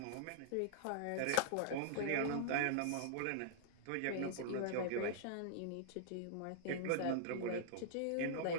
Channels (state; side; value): different; both; correlation -0.01